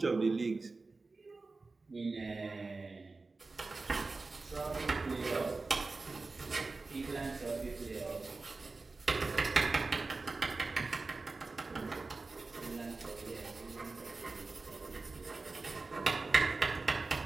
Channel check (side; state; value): left; quieter; 3.7 dB